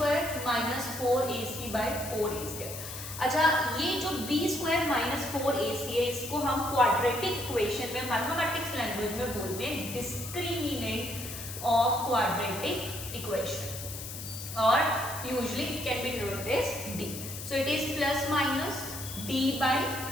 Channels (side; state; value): left; noise; hiss, 9 dB below the sound